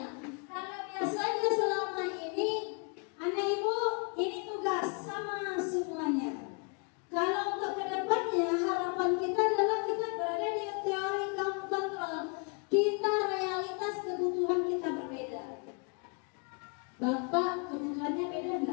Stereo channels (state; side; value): quieter; right; 35.6 dB